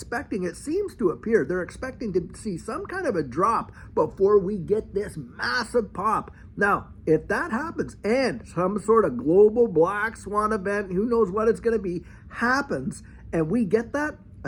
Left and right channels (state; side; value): identical; both; correlation 1.00